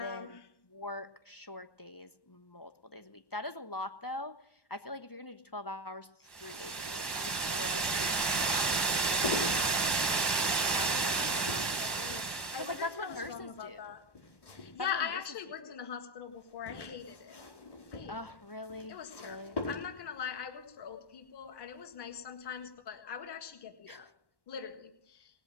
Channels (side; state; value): right; late; 1.1 ms